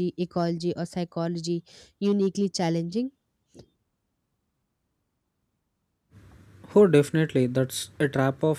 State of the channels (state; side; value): identical; both; correlation 1.00